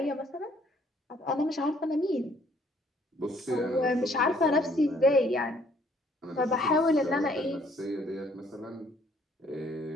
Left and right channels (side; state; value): both; normal; correlation 0.63